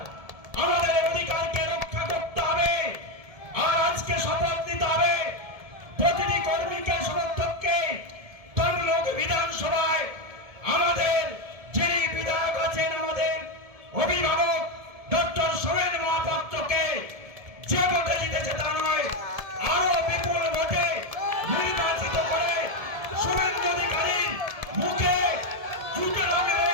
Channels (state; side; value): late; left; 1.7 ms